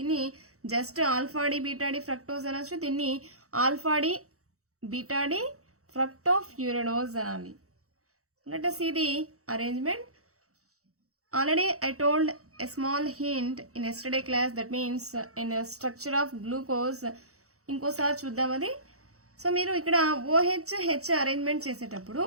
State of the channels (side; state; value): left; late; 0.65 ms